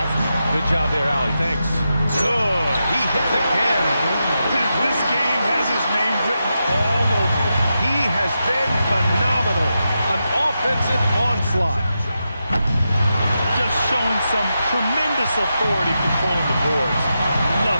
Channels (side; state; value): both; inverted; correlation -0.88